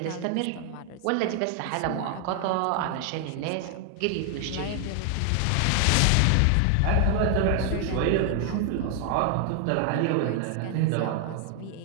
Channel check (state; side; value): different; both; correlation 0.00